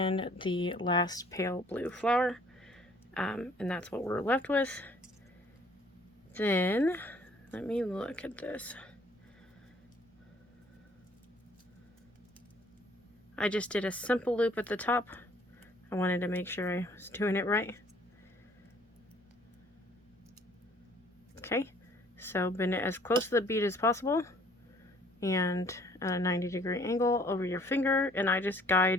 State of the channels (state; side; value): normal; both; correlation 0.58